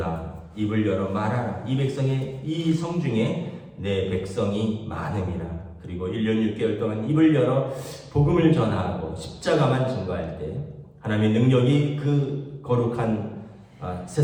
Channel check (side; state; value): both; identical; correlation 1.00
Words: 입을 열어 말하라. 이 성 중에 내 백성이 많음이라. 그리고 1년 6개월 동안 입을 열어 복음을 전하고 십자가만 증거할 때 하나님의 능력이 그 거룩한